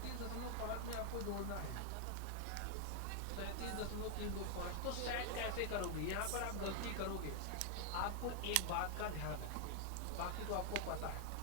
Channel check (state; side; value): different; both; correlation 0.00